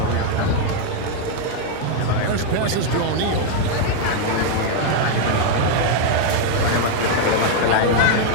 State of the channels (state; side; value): different; both; correlation 0.00